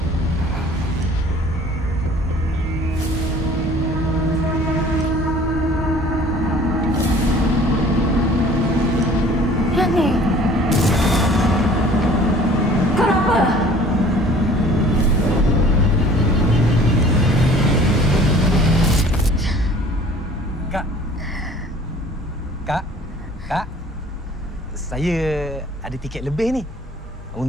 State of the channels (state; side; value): normal; both; correlation 0.50